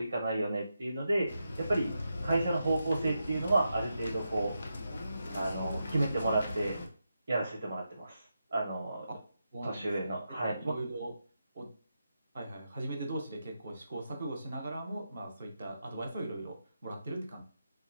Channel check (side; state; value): both; inverted; correlation -0.87